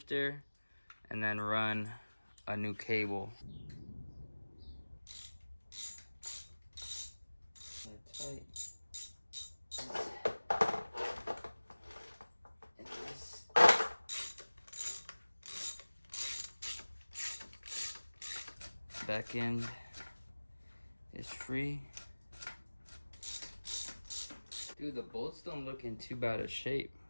and then run a new cable. Tight. And this back end is free. Dude, the bolts don't look in too bad a shape.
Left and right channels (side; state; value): both; inverted; correlation -1.00